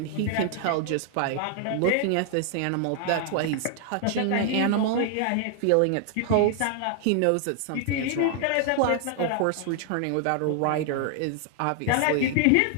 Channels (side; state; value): both; different; correlation 0.00